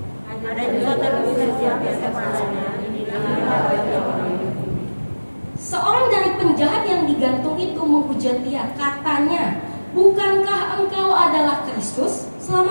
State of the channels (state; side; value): inverted; both; correlation -1.00